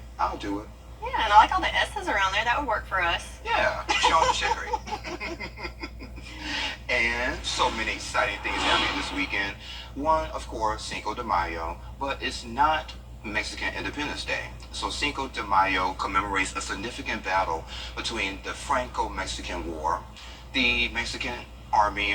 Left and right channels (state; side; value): identical; both; correlation 1.00